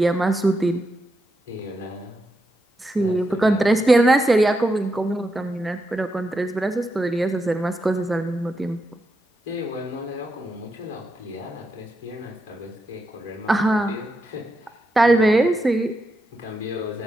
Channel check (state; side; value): normal; both; correlation 0.85